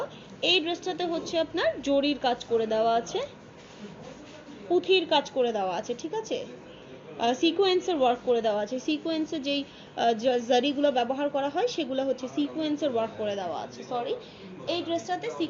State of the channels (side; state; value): both; identical; correlation 1.00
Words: এই ড্রেসটাতে হচ্ছে আপনার জরির কাজ করে দেওয়া আছে, পুঁথির কাজ করে দেওয়া আছে, ঠিক আছে, সিকোয়েন্সের ওয়ার্ক করে দেওয়া আছে। সিকোয়েন্সের যেই জারিগুলো ব্যবহার করা হয় সেগুলো হচ্ছে সিকোয়েন্সের ওয়ার্ক করে দেওয়া আছে, সরি এই ড্রেসটাতে